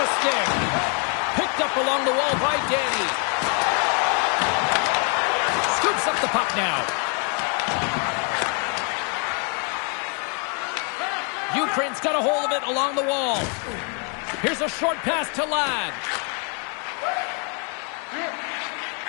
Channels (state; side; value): quieter; right; 39.0 dB